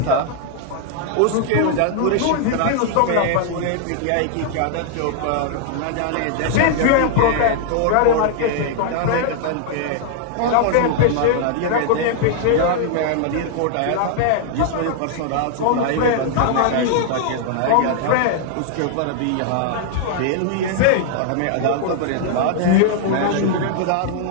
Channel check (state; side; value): different; both; correlation -0.01